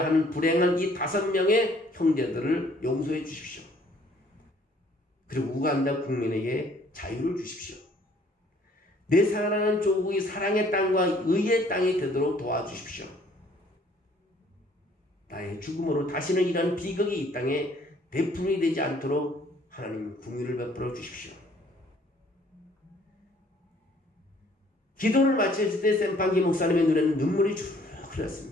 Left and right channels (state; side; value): normal; both; correlation 0.59